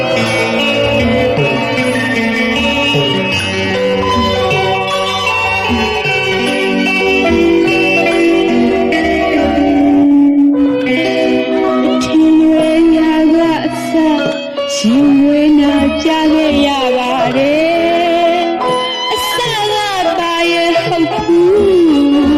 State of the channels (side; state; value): both; identical; correlation 1.00